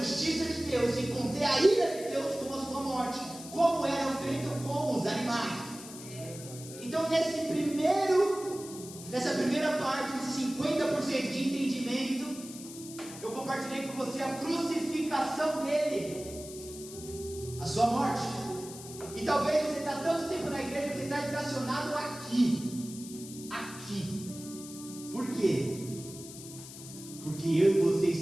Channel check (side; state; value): left; noise; hiss, 14 dB below the sound